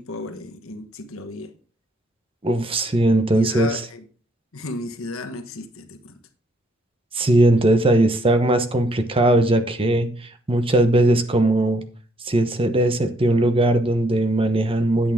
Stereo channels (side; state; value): both; normal; correlation 0.69